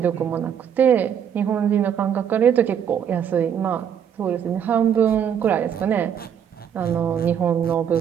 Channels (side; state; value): left; quieter; 8.5 dB